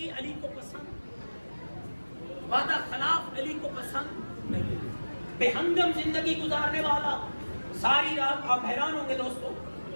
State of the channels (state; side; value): inverted; both; correlation -1.00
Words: علی کو پسند، وعدہ خلاف علی کو پسند نہیں۔ بے ہنگم زندگی گزارنے والا ساری رات آپ حیران ہوں گے دوستو،